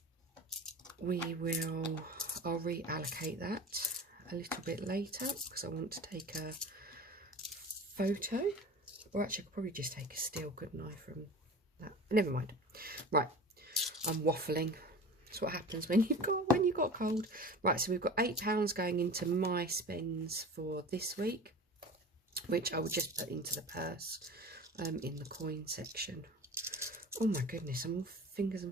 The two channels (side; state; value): both; normal; correlation 0.36